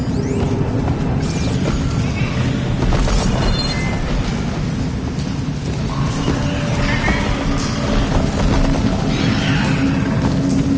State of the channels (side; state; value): both; identical; correlation 1.00